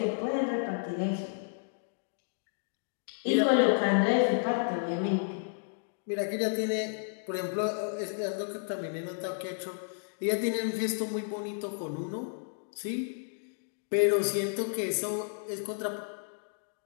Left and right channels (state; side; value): silent; right; digital silence